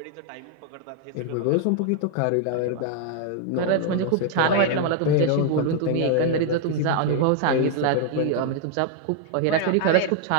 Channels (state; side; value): different; both; correlation 0.00